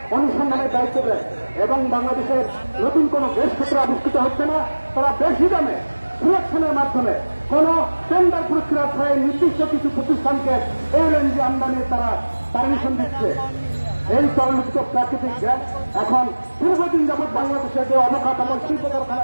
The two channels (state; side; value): inverted; both; correlation -1.00